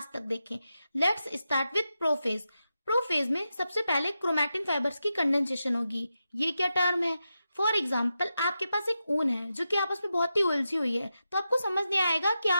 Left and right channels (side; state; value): both; inverted; correlation -0.89